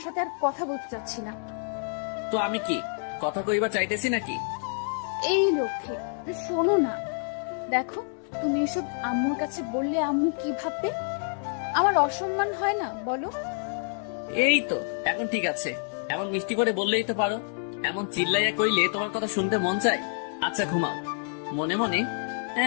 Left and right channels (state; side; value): silent; right; 60 dB below the other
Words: সাথে আর কথা বলতে চাচ্ছি না। তো আমি কি কথা কইবা চাইতেছি নাকি? এই লক্ষ্যে শোনো না, দেখো তুমি এসব আম্মুর কাছে বললে আম্মু কি ভাববে? আমার অসম্মান হয় না বলো? এই তো এখন ঠিক আছে, এমন মিষ্টি করে বললেই তো পারো। এমন চিল্লাইয়া কইলে তোমার কথা শুনতে মন চায়। আচ্ছা ঘুমাও। মনে মনে